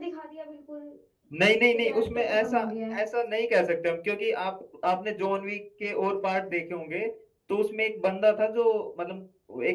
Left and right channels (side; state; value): both; identical; correlation 1.00